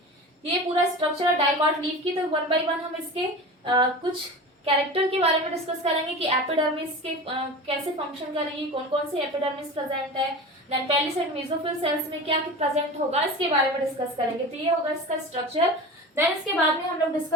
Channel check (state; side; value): normal; both; correlation 0.31